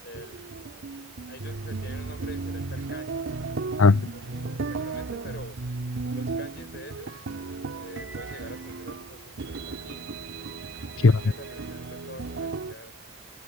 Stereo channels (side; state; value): both; normal; correlation 0.52